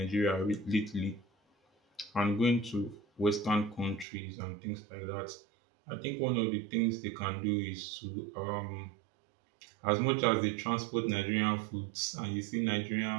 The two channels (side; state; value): left; drops out; at 4.0 s